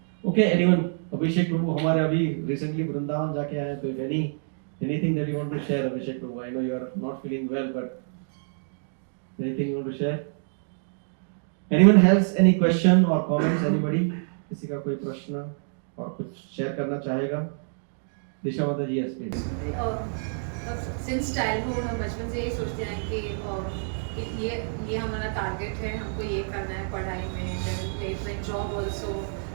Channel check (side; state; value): left; silent; digital silence